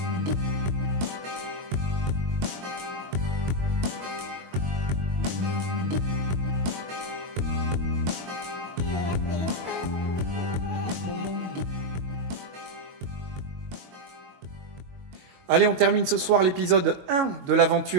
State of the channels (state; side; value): late; left; 22 ms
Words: Allez, on termine ce soir l'épisode 1 de la